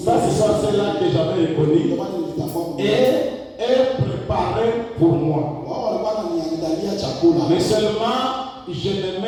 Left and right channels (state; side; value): identical; both; correlation 1.00